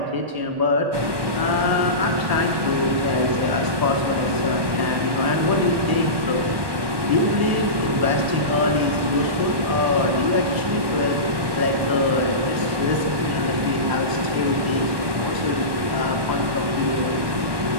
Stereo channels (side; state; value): left; late; 1.2 ms